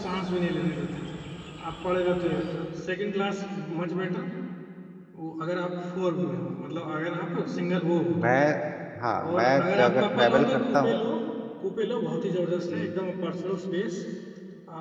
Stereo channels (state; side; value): identical; both; correlation 1.00